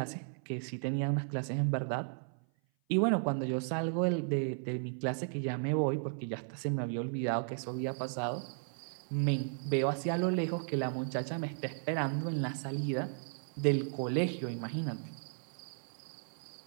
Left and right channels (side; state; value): left; silent; 54 dB below the other